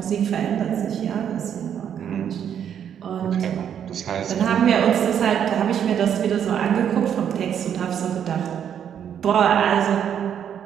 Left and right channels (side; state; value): left; quieter; 8.9 dB